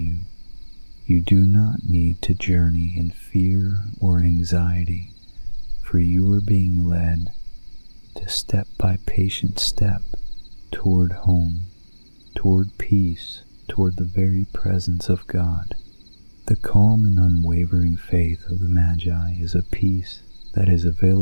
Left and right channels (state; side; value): inverted; both; correlation -1.00